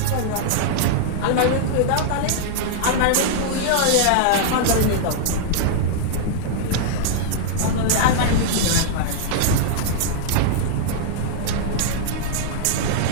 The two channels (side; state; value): both; different; correlation -0.01